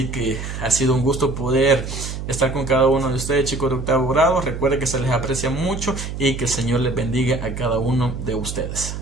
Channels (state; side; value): noise; right; hum, 7 dB below the sound